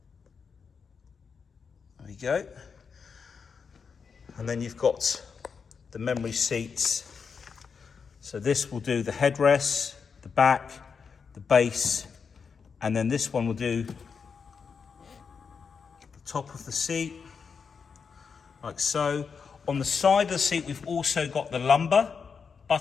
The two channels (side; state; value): right; quieter; 5.8 dB